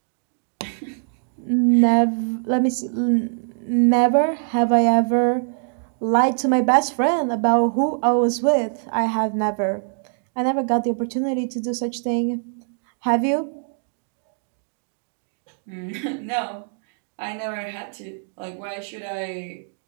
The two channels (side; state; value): left; silent; digital silence